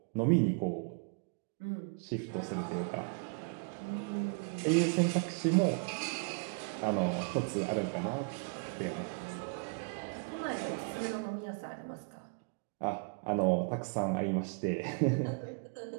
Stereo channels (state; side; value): quieter; left; 36.2 dB